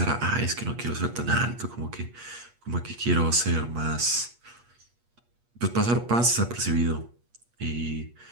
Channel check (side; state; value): left; late; 8.4 ms